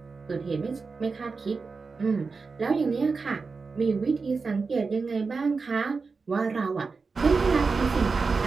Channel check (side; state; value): left; quieter; 4.5 dB